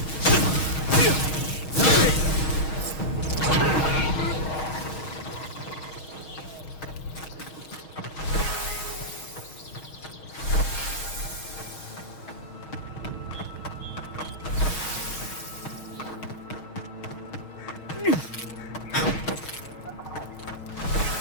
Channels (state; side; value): late; right; 6.4 ms